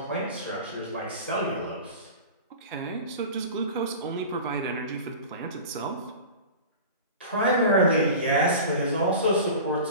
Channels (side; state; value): both; inverted; correlation -0.34